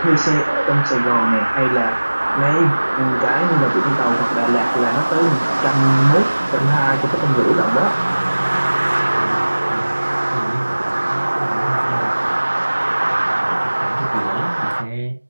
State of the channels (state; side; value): inverted; both; correlation -1.00